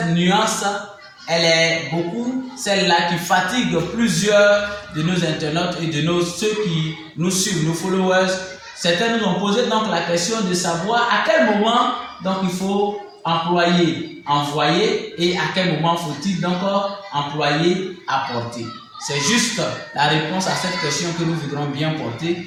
nuance, elle est beaucoup celle-là qui fatigue plusieurs de nos internautes et de ceux qui nous suivent, nos followers. Certains nous ont posé donc la question de savoir à quel moment donc il faut employer envoyer et à quel moment faut-il donc employer apporter. C'est juste la réponse à cette question que nous voudrons bien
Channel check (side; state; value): both; identical; correlation 1.00